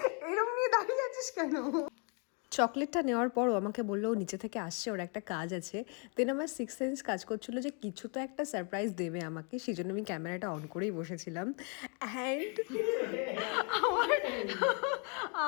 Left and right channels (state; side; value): quieter; right; 37.9 dB